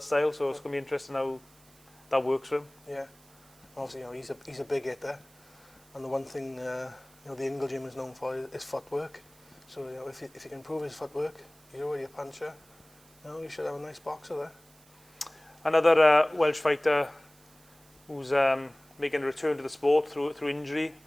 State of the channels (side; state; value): right; noise; hiss, 27 dB below the sound